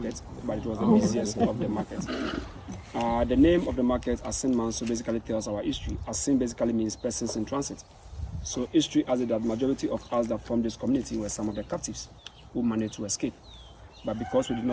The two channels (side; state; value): both; identical; correlation 1.00